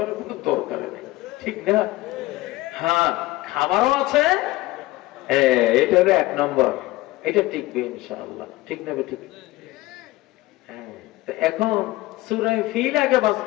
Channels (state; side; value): quieter; right; 18.8 dB